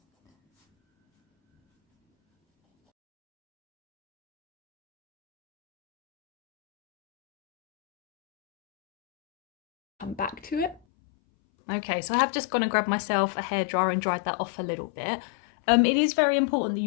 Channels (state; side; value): drops out; right; at 10.8 s